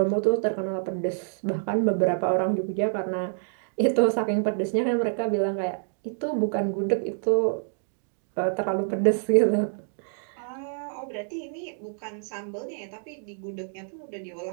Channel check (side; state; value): left; silent; digital silence